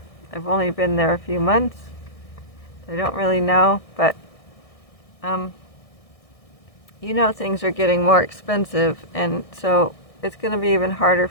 I've only been there a few months. I don't really know, but you know, things are getting more expensive, and so it's going to be even harder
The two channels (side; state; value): right; late; 1.6 ms